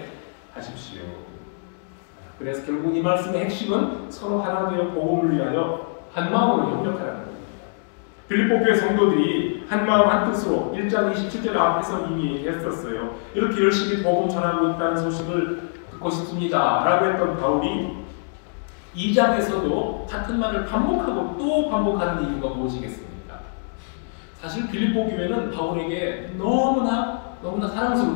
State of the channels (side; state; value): right; silent; digital silence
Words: 하십시오. 그래서 결국 이 말씀의 핵심은 서로 하나 되어 복음을 위하여 한 마음으로 협력하라는 겁니다. 빌립보 교회 성도들이 한 마음 한 뜻으로 1장 27절 앞에서 이미 얘기했었어요. 이렇게 열심히 복음 전하고 있다는 소식을 듣고 싶습니다 라고 했던 바울이 2장에서도 같은 말을 반복하고 또 반복하는 이유가 무엇이겠습니까? 사실 빌립보 교회는 바울에게 너무나